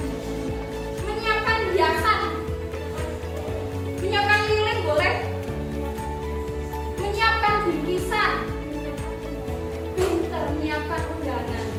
menyiapkan hiasan, menyiapkan lilin boleh, menyiapkan bingkisan, pinter menyiapkan undangan.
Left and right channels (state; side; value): identical; both; correlation 1.00